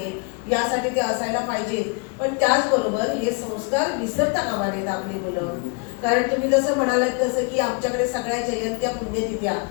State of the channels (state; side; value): quieter; right; 33.2 dB